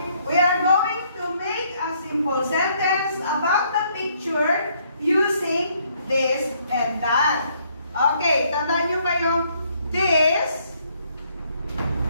We are going to make a simple sentence about the picture using this and that. Okay, tandaan nyo ba yung this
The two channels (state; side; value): inverted; both; correlation -0.68